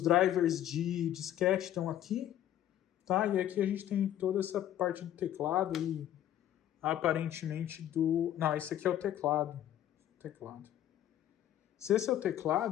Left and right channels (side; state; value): right; quieter; 11.8 dB